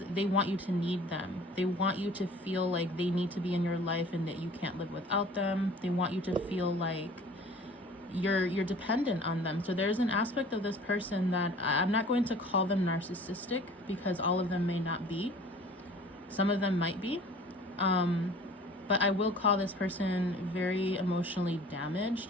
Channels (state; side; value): normal; both; correlation 0.47